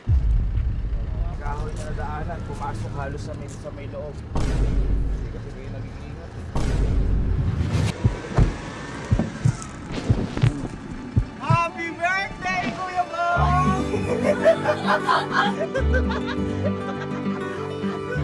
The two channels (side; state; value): both; identical; correlation 1.00